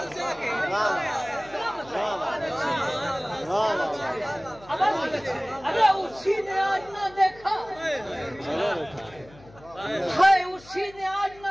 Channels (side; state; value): left; noise; hum, 23 dB below the sound